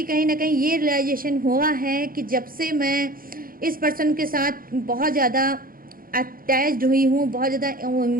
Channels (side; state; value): left; late; 0.42 ms